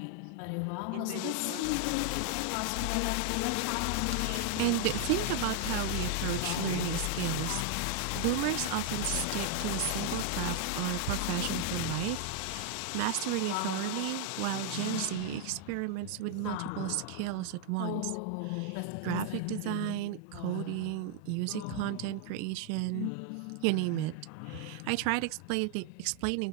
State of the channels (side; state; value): both; different; correlation 0.00